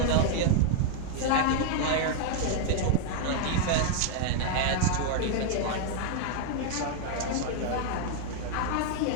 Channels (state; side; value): different; both; correlation 0.00